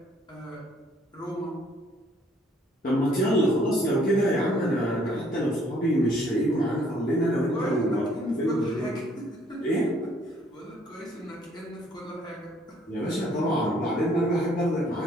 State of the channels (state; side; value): normal; both; correlation 0.63